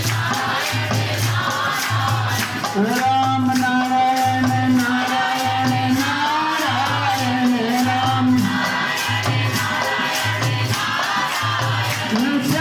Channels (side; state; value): both; identical; correlation 1.00